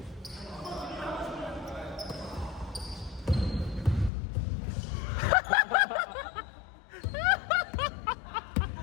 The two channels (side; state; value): right; drops out; at 4.1 s